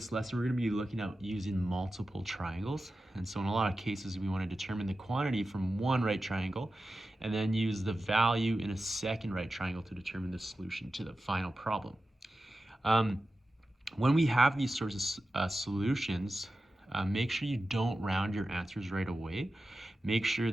we're going to be looking at using multiple triangles. And so in a lot of cases, we want to determine the quantity from one right triangle and then use the value in a second right triangle to determine the solution to the final problem. When we have these sorts of solutions, make sure you don't round your answers right away. Make sure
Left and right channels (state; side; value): normal; both; correlation 0.93